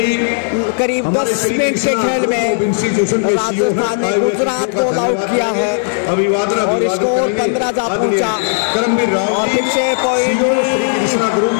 करीब 10 मिनट के खेल में राजस्थान ने गुजरात को ऑल आउट किया है अभिवादन और स्कोर 15 जा पहुंचा करमबीर राव और फिर से पॉइंट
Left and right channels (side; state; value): right; silent; digital silence